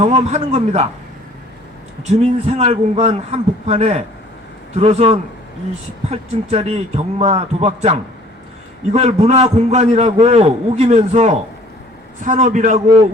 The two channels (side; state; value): both; normal; correlation 0.54